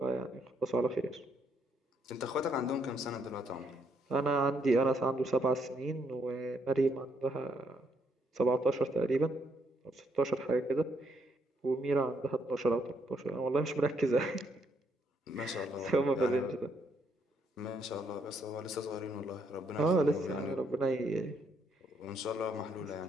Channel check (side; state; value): both; normal; correlation 0.73